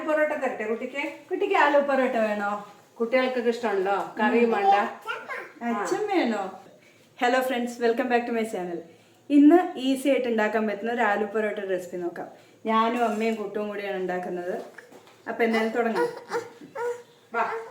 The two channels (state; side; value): identical; both; correlation 1.00